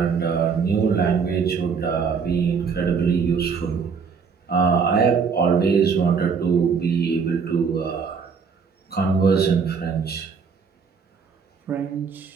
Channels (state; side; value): quieter; left; 5.9 dB